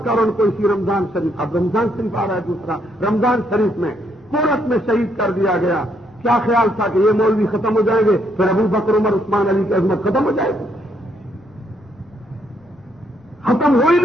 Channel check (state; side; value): normal; both; correlation 0.73